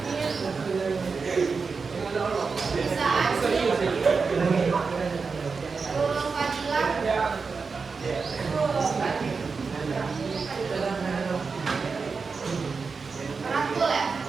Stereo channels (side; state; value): left; quieter; 4.9 dB